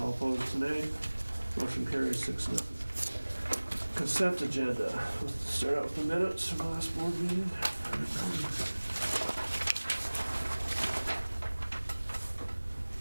opposed nay. Motion carries 6-0. Consent agenda. Let's start out with the minutes from the last board meeting.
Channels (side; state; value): both; inverted; correlation -1.00